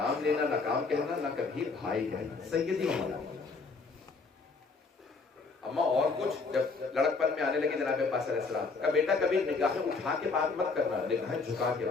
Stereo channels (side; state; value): right; quieter; 4.3 dB